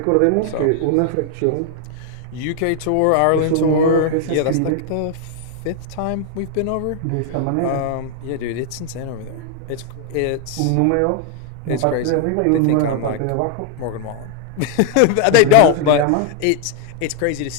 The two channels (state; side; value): different; both; correlation 0.00